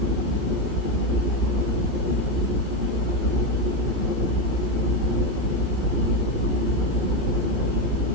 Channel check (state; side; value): late; left; 15 ms